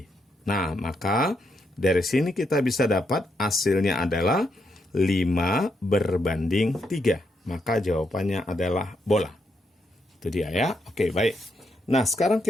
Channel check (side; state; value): both; normal; correlation 0.79